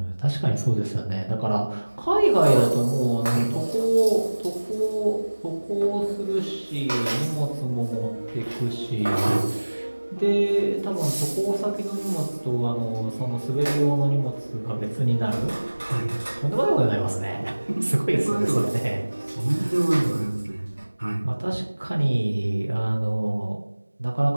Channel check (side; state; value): both; inverted; correlation -1.00